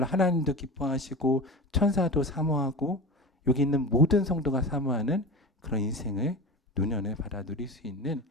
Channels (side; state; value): both; normal; correlation 0.29